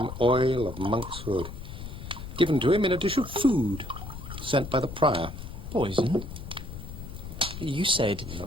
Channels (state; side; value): noise; left; rumble, 10 dB below the sound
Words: oil of monk's hood. Given to him in a dish of food, sent by the prior. Poison? You said...